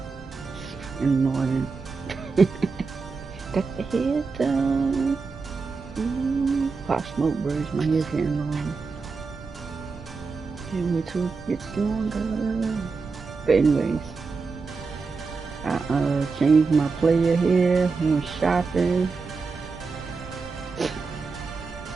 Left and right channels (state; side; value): quieter; left; 4.6 dB